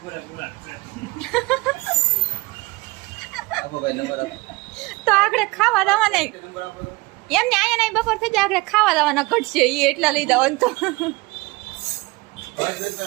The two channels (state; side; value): quieter; left; 23.5 dB